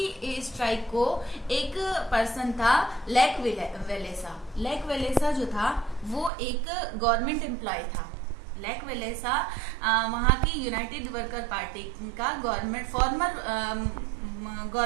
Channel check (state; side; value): drops out; left; at 6.3 s